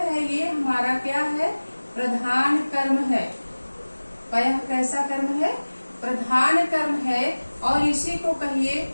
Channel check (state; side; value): inverted; both; correlation -1.00